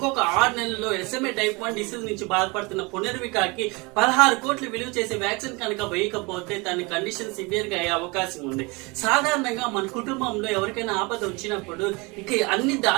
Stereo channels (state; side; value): quieter; left; 26.8 dB